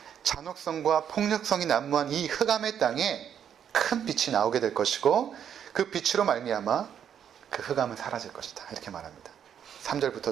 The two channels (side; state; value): left; quieter; 8.8 dB